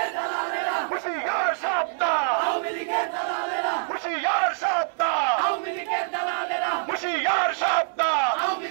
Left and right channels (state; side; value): silent; left; 62 dB below the other